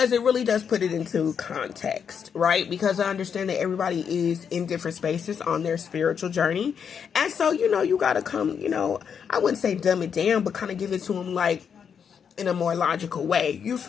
it really does put it into context, right? Because I understand that everybody is in different spaces on their spiritual journey. And so, you got to come, I wouldn't say dumb it down, but kind of give it to them like in a more logical way. You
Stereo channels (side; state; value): right; quieter; 7.2 dB